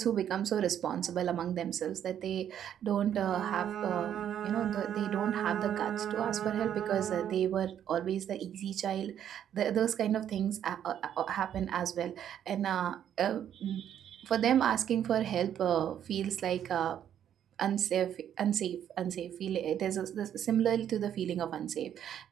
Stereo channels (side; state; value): left; quieter; 9.8 dB